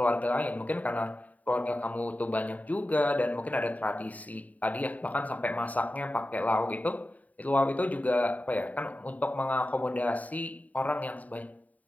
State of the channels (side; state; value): right; late; 0.072 ms